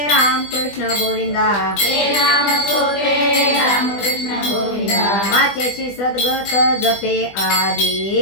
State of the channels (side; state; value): right; late; 20 ms